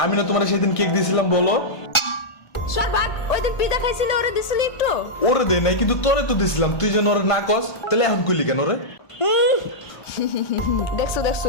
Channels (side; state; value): right; late; 1.4 ms